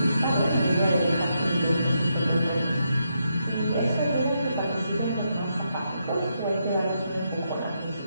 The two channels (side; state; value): both; inverted; correlation -0.81